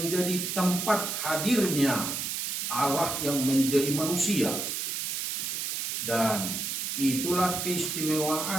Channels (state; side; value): noise; right; hiss, 2 dB below the sound